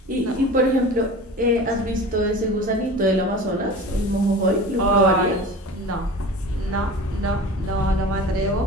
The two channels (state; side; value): normal; both; correlation 0.36